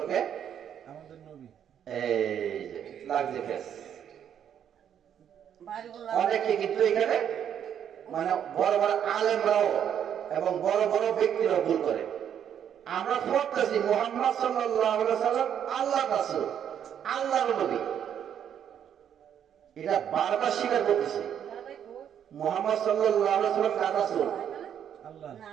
আমাদের নবী। এই যে লাগছে ফেস। অনেকে কিন্তু এখানে মানে বড় বড় আলেমরাও এবং বড় বড় ব্যক্তিরা ভুল করে। আমরা পড়তেছি মুহাম্মদ সাল্লাল্লাহু আলাইহি ওয়াসাল্লাম আল্লাহর রাসূল, আল্লাহর নবী, এটা বারবার স্বীকার করতেছি। মুহাম্মদ সাল্লাল্লাহু আলাইহি ওয়াসাল্লাম কার রাসূল?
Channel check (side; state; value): left; quieter; 9.1 dB